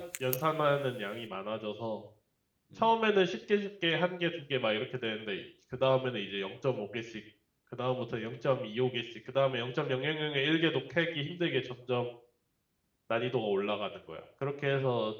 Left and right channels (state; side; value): identical; both; correlation 1.00